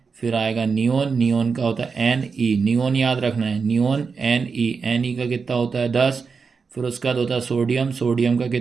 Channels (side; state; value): left; quieter; 5.2 dB